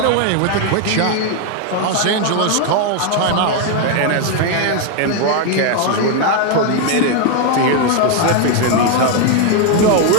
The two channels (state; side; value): different; both; correlation 0.01